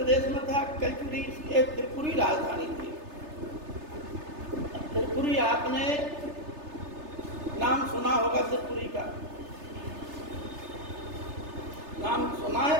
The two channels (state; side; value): late; left; 3.3 ms